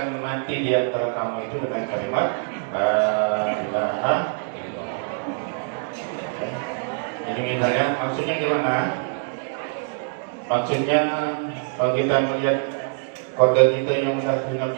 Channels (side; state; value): left; silent; digital silence